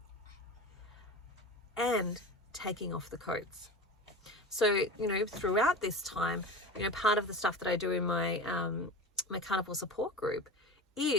and taking off the coats. So, you know, throughout this time, you know, part of the stuff that I do in my my carnivore support group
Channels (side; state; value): both; normal; correlation 0.31